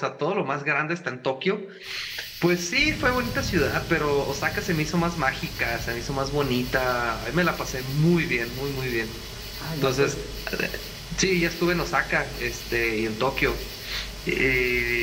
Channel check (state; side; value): identical; both; correlation 1.00